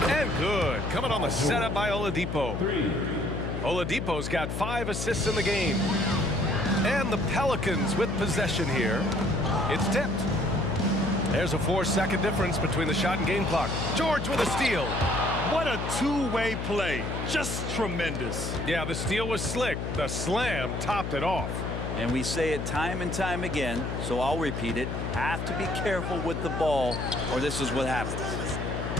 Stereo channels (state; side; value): noise; left; hum, 3 dB below the sound